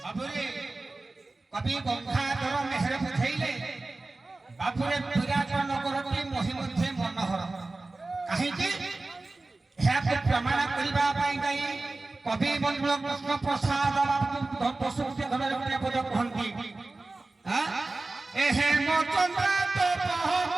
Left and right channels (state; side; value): quieter; left; 3.2 dB